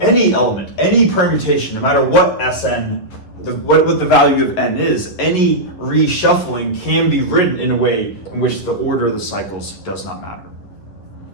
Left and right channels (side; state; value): right; late; 11 ms